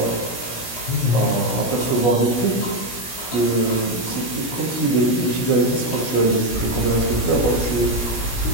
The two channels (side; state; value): right; late; 17 ms